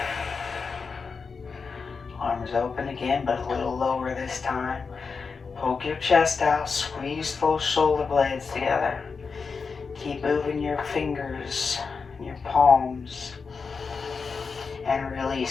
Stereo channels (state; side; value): quieter; right; 5.1 dB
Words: Arms open again, but a little lower this time. Poke your chest out, squeeze those shoulder blades together. Keep moving your fingers, your palms. And